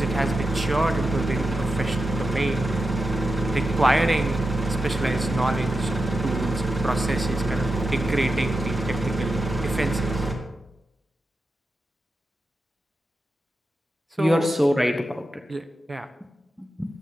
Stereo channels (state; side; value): normal; both; correlation 0.90